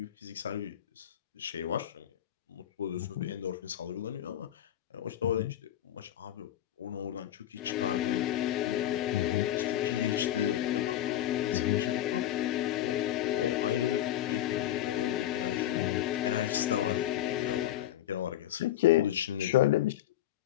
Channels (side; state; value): right; quieter; 12.2 dB